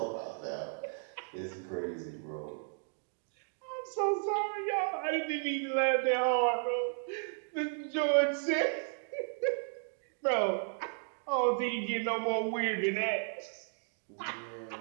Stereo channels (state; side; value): silent; left; 55 dB below the other